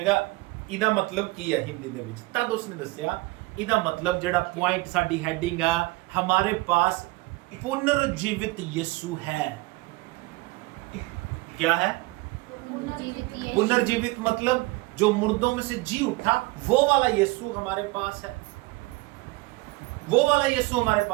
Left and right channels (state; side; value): quieter; left; 22.4 dB